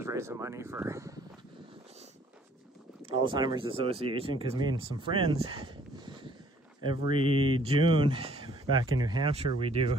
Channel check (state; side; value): normal; both; correlation 0.60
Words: raising money for Alzheimer's Association, because me and some friends, every June back in New Hampshire, we